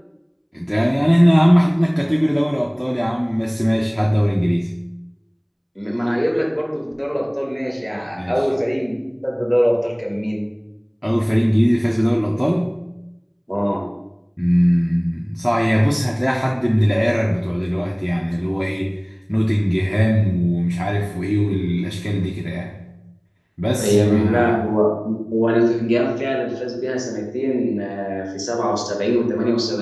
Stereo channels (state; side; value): identical; both; correlation 1.00